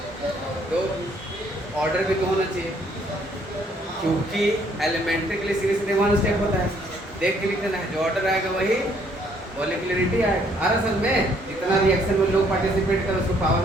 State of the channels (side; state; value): both; normal; correlation 0.65